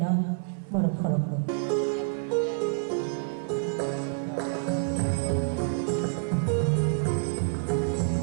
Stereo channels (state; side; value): silent; left; 57 dB below the other